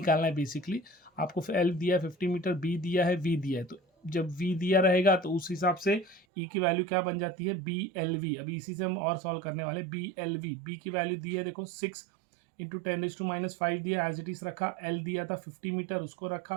है बेसिकली। आपको L दिया है 50 मीटर, B दिया है, V दिया है, तो जब V दिया रहेगा तो उस हिसाब से E की वैल्यू क्या बन जाती है, BLV। अभी इसी से हम और सॉल्व करने वाले। BLV, B की वैल्यू दी है देखो 6 इंटू 10⁻⁵ दिया, एज इट इज रखा। L दिया था 50 मीटर, उसको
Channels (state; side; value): drops out; left; at 6.2 s